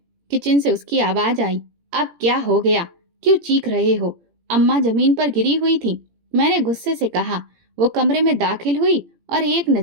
किचन से उसकी आवाज आई। अब क्या हो गया? क्यों चीख रहे हो? अम्मा जमीन पर गिरी हुई थी। मैंने गुस्से से कहा। वो कमरे में दाखिल हुई और एक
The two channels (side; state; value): left; late; 17 ms